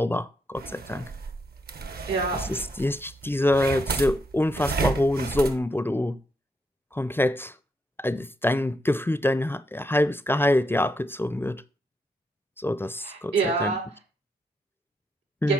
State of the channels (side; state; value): both; normal; correlation 0.79